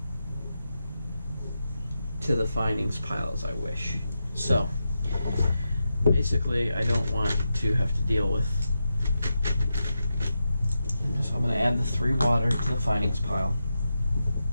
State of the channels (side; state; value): both; inverted; correlation -0.89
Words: to the findings pile as I wish. So, basically, I don't want to have to deal with. So I'm going to add the 3 water to the findings pile,